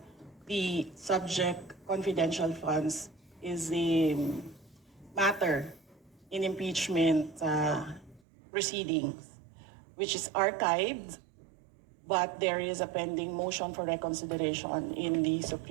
the subject confidential funds is the matter in impeachment proceedings, which is archived, but there is a pending motion for reconsideration in the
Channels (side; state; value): left; drops out; at 8.2 s